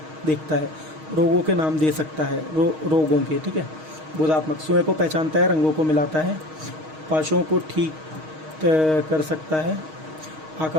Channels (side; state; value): left; late; 6.4 ms